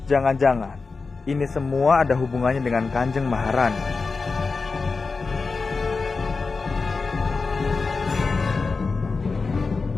Jangan-jangan ini semua ada hubungannya dengan Kanjeng Maharani.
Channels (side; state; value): right; quieter; 4.3 dB